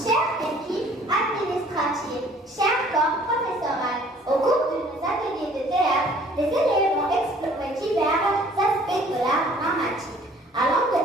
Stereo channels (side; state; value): both; normal; correlation 0.55